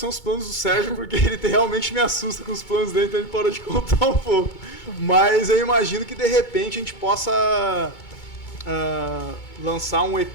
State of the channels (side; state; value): right; late; 2.2 ms